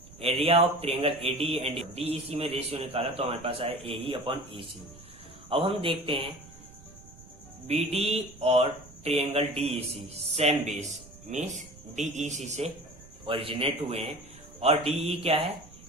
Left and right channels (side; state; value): right; noise; rumble, 21 dB below the sound